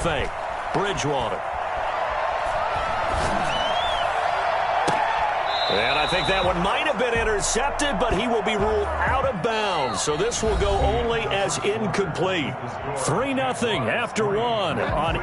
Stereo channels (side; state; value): both; identical; correlation 1.00